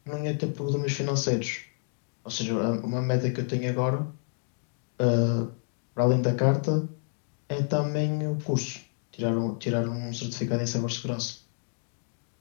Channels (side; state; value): right; silent; 59 dB below the other